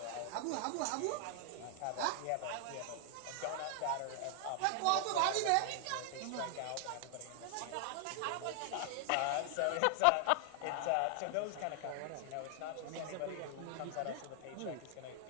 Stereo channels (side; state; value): both; different; correlation 0.00